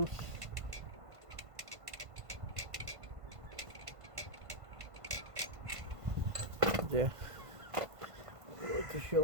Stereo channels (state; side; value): late; left; 1.5 ms